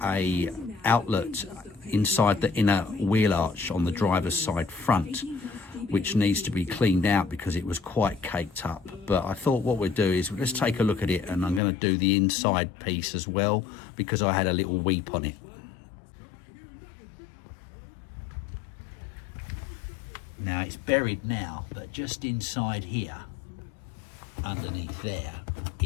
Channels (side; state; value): right; drops out; at 11.6 s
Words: a outlet inside the inner wheel arch on the driver's side front which needs to be cleaned out because it was quite caked up. But I thought what we'd do is let's take a look at it, and I'm going to do the inside piece as well because I had a little weep on it. Now it's buried now, but just inside here, underneath there,